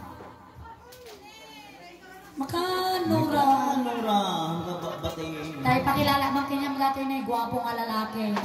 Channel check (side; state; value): both; identical; correlation 1.00